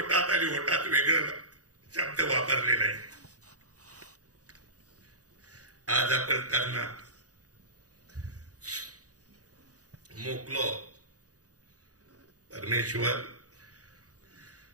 आणि होटात वेगळं शब्द वापरले नाही. आज आपण त्यांना मोकलो. परमेश्वर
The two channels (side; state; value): left; late; 0.67 ms